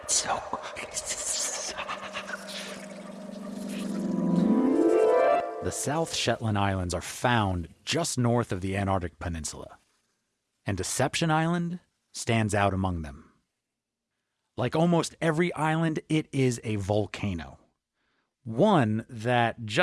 The South Shetland Islands are found just north of the Antarctic Peninsula, and Deception Island stands out among them. Like almost every island, it is a volcano. One that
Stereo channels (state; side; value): identical; both; correlation 1.00